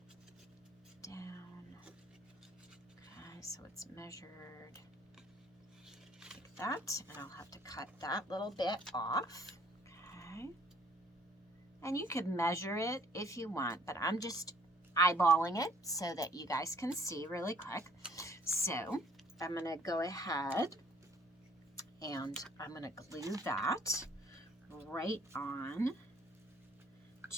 down. Okay, so it's measured like that, and I'll have to cut that little bit off. Okay, and you could measure it if you want, but I'm just eyeballing it so that you guys can see really quick. So I'm going to go ahead and I'm going to glue that right on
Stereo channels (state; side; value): normal; both; correlation 0.59